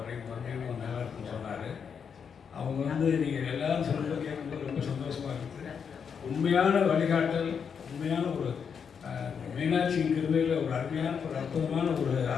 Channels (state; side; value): quieter; right; 6.8 dB